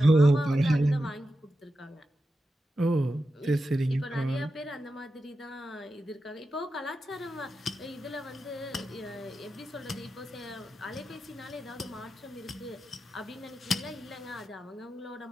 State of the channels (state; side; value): normal; both; correlation 0.90